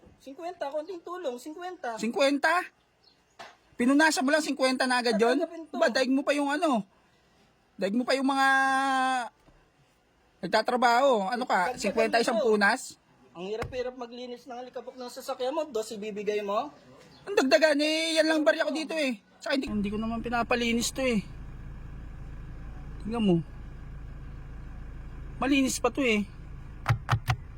50, konting tulong, 50. 50? Pinunasan mo lang 50 na agad yun? Tatanggapin to. Ba, daig mo pa yung ano? Daig mo pa yung mga nagtatrabaho. Ano ka? 50 isang punas? Ang hirap-hirap maglinis ng alikabok ng sasakyan mo, dos ibibigay mo? Ang dagdagan eh, yan lang barya ko dito eh. Saka hindi ko naman pinapalinis to eh. Tingnan mo. Malinis pa to eh.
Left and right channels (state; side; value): identical; both; correlation 1.00